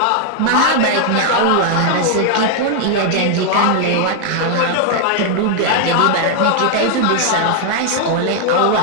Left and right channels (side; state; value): both; different; correlation 0.00